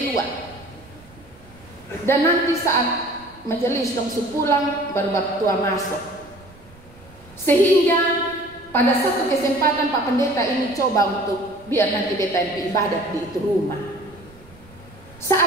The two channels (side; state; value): right; noise; rumble, 24 dB below the sound